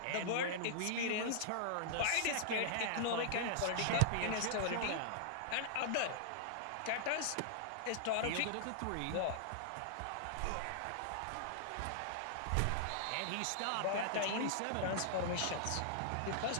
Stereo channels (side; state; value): both; different; correlation -0.01